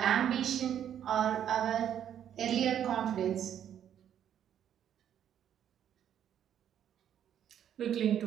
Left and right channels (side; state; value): left; quieter; 9.8 dB